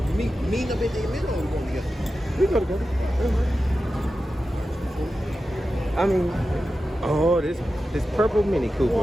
Meet up in the middle or we going together? We go together. I mean, oh, this purple Mini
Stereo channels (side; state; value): both; normal; correlation 0.92